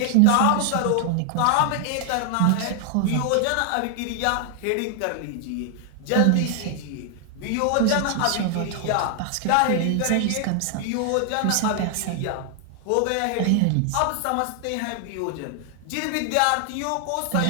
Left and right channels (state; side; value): different; both; correlation 0.00